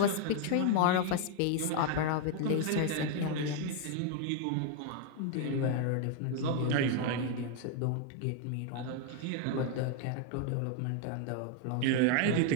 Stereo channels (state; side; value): different; both; correlation 0.01